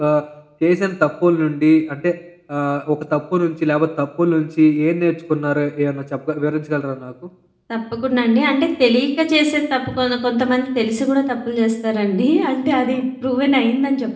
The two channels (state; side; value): identical; both; correlation 1.00